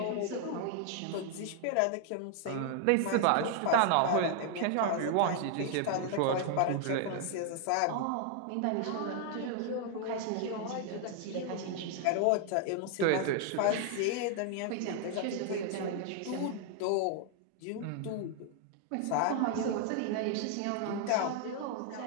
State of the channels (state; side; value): different; both; correlation 0.00